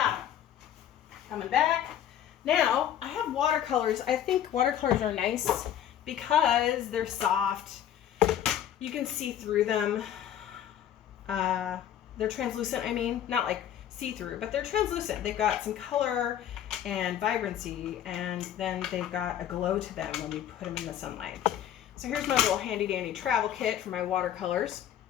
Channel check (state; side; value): quieter; right; 10.6 dB